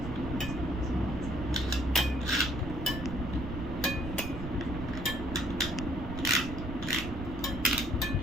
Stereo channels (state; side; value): noise; right; rumble, 7 dB below the sound